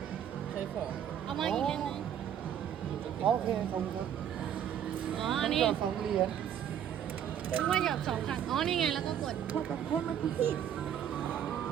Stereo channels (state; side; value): quieter; left; 9.5 dB